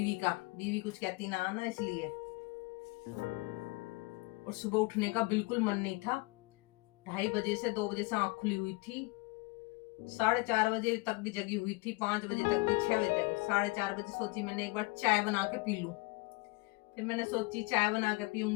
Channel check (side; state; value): right; quieter; 25.3 dB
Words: का, बीवी कुछ कहती ना इसलिए। और सुबह उठने का बिल्कुल मन नहीं था। 2:30 बजे से 2 बजे से आंख खुली हुई थी, 4:30 बजे तक भी जगी हुई थी, 5 बजे तक भी, 6 बजे तक। 4:30 बजे सोची मैंने एक बार चाय बना के पी लूं। फिर मैंने सोची चाय बना के